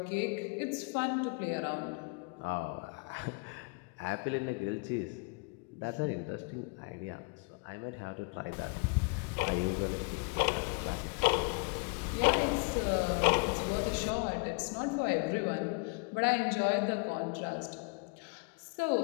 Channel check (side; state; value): right; quieter; 33.1 dB